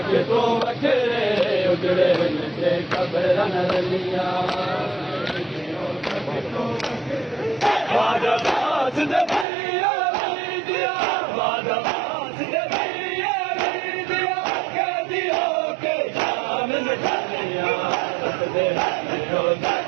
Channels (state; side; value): drops out; left; at 9.5 s